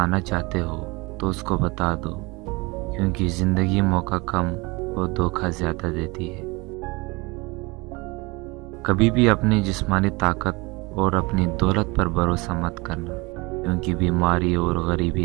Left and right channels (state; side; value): quieter; left; 25.3 dB